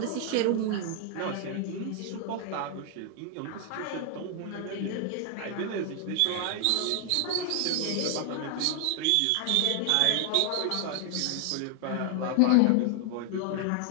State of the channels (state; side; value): different; both; correlation 0.00